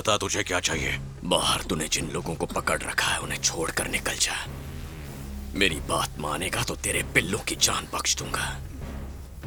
तुझे क्या चाहिए? बाहर तूने जिन लोगों को पकड़ रखा है उन्हें छोड़कर निकल जा। मेरी बात मानेगा तो तेरे पिल्लों की जान बख्श दूंगा।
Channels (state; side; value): identical; both; correlation 1.00